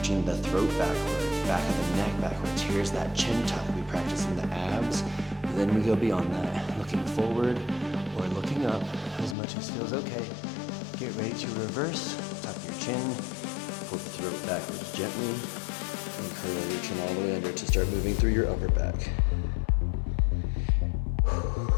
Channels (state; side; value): drops out; right; at 9.3 s